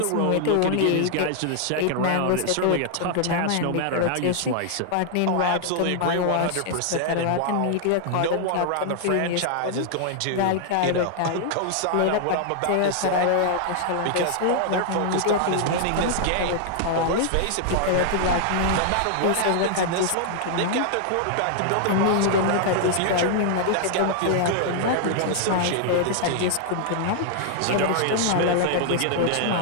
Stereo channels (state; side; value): different; both; correlation 0.00